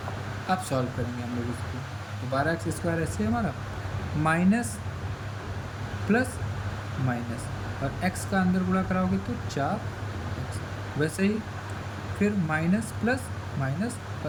अब सॉल्व करेंगे हम लोग इसको, तो 12x स्क्वायर ऐसे हमारा माइनस प्लस माइनस, और x का अंदर गुणा कराओगे तो 4x। वैसे ही फिर माइनस प्लस माइनस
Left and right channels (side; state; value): both; identical; correlation 1.00